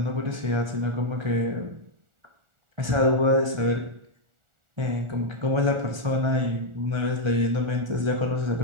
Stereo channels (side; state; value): left; late; 1.4 ms